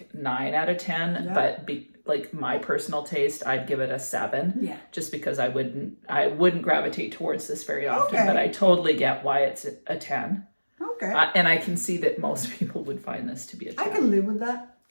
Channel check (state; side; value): inverted; both; correlation -1.00